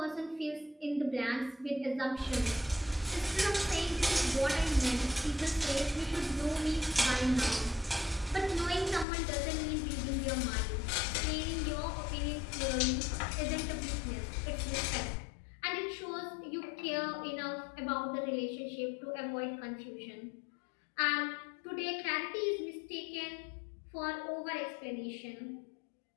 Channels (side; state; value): right; drops out; at 9.1 s